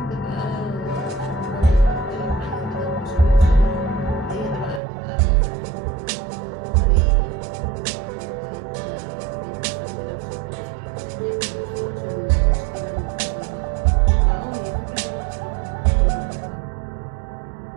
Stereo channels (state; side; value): drops out; left; at 4.8 s